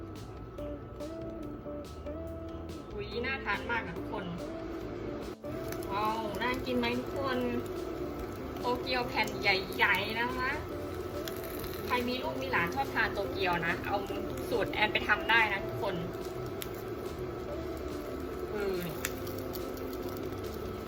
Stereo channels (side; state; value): both; identical; correlation 1.00